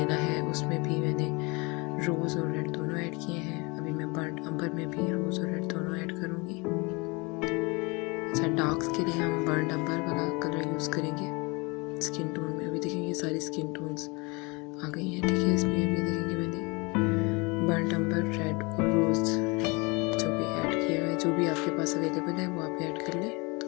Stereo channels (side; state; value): right; quieter; 27.7 dB